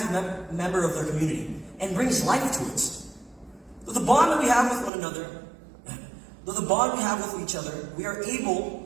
member of their community and brings life to it. With the bond that we have with one another, with each other, we are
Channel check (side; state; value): left; drops out; at 4.9 s